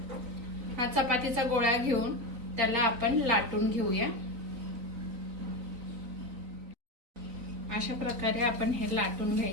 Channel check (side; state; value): left; late; 3.9 ms